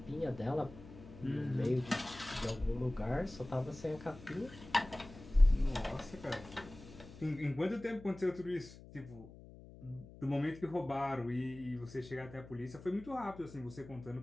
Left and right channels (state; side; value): noise; left; hum, 17 dB below the sound